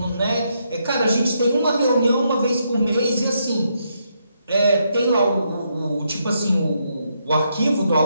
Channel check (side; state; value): both; inverted; correlation -0.78